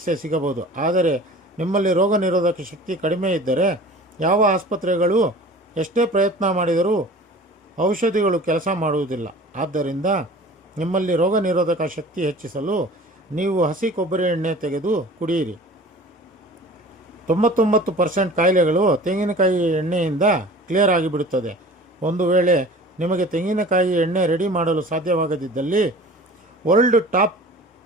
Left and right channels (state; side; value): normal; both; correlation 0.42